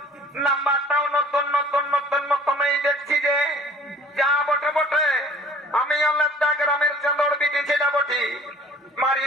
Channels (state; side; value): normal; both; correlation 0.50